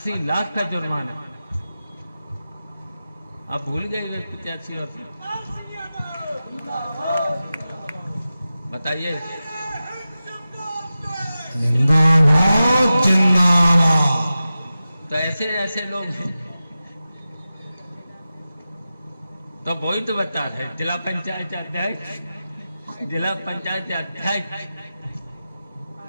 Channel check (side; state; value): both; inverted; correlation -0.94